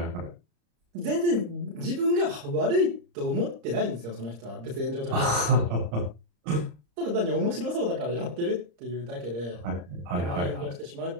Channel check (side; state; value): left; late; 34 ms